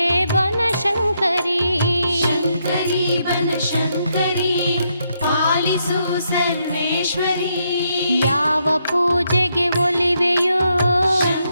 ಬನಶಂಕರಿ ಶಂಕರಿ ಬನಶಂಕರಿ ಪಾಲಿಸು ಸರ್ವೇಶ್ವರಿ ಯಾವ ಪೂಜೆಗೆ ಒಲಿವೆಯೋ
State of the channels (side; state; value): both; inverted; correlation -0.78